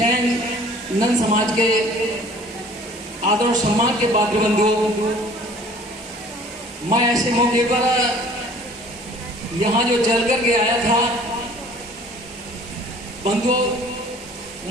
नंद समाज के आदर और सम्मान के पात्र बंधुओं, मैं ऐसे मौके पर यहाँ जो चल करके आया था बंधुओं,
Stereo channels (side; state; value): both; normal; correlation 0.51